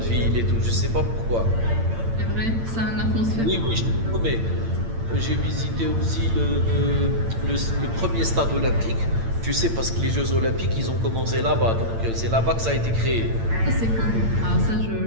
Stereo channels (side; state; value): left; late; 8.8 ms